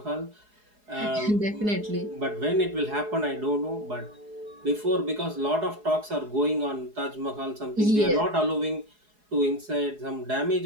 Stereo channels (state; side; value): late; left; 4.8 ms